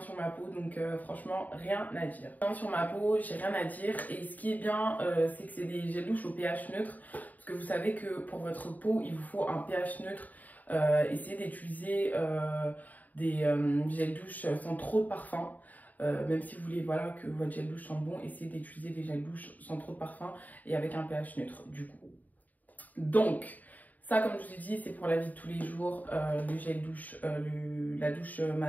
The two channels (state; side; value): late; right; 0.079 ms